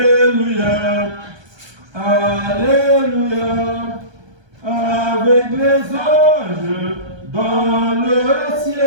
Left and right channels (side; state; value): left; late; 1.2 ms